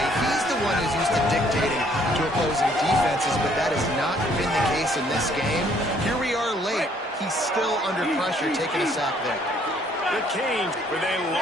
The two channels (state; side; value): normal; both; correlation 0.64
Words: He's the one who's used to dictating to opposing defenses, but that has not been the case in this game. Here we are late. He's still under pressure, taking a sack there. The Canes with a